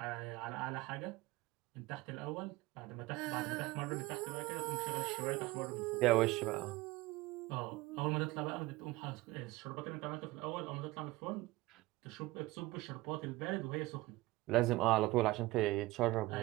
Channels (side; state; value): left; quieter; 19.8 dB